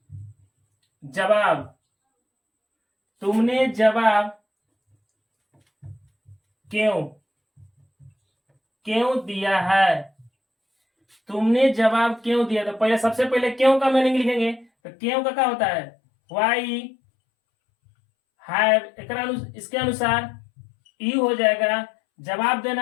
जवाब क्यों दिया है? तुमने जवाब क्यों दिया? तो पहले सबसे पहले क्यों का मीनिंग लिखेंगे। तो क्यों का क्या होता है वाई हैव। इसके अनुसार यू हो जाएगा, जवाब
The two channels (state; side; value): drops out; right; at 14.7 s